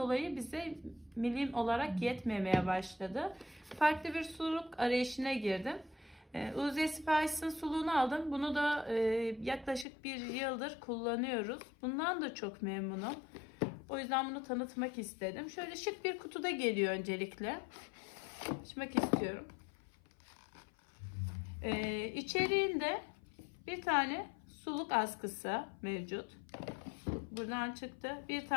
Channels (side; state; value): right; drops out; at 9.9 s